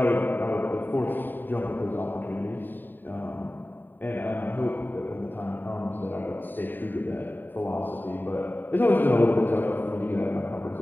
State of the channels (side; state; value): right; late; 0.091 ms